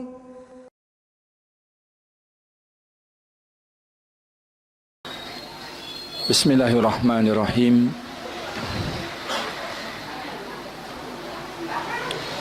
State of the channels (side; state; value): both; identical; correlation 1.00